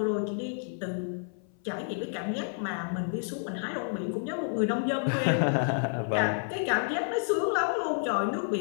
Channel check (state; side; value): silent; right; 56 dB below the other